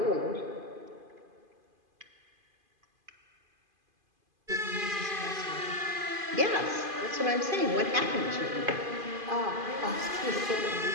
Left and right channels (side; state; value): left; late; 2.5 ms